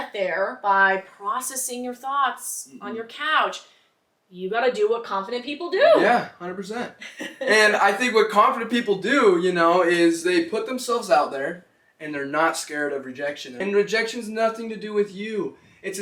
there by processing your thoughts on your couch. You got to do what confident people do. Yeah, 100%. And I think what confident people do, is they put themselves out there and they're not scared of rejection. And rejection's nothing to do with you. It's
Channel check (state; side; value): identical; both; correlation 1.00